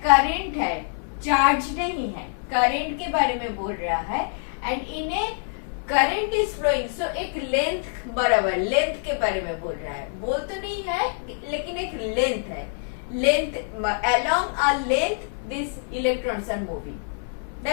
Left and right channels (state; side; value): silent; right; 62 dB below the other